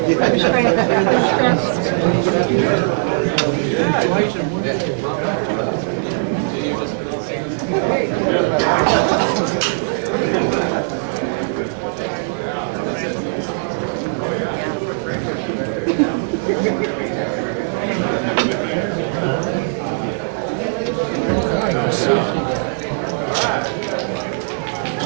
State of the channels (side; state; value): left; silent; digital silence